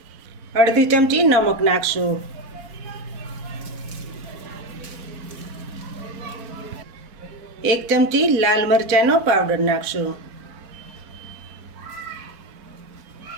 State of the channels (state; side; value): late; left; 4.5 ms